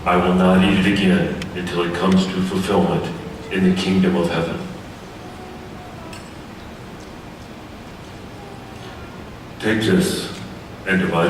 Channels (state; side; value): identical; both; correlation 1.00